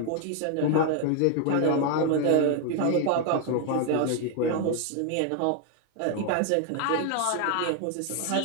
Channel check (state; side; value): different; both; correlation 0.00